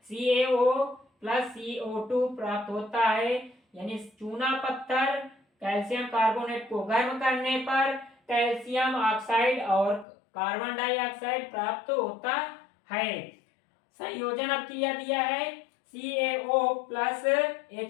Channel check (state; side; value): drops out; right; at 10.1 s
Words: CaO प्लस CO2 प्राप्त होता है, यानी चूना पत्थर कैल्शियम कार्बोनेट को गर्म करने पर कैल्शियम ऑक्साइड और कार्बन डाइऑक्साइड प्राप्त होता है। संयोजन अपक्रिया दिया है, CaO प्लस